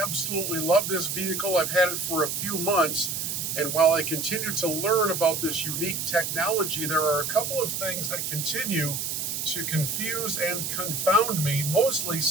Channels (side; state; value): right; noise; hiss, 3 dB below the sound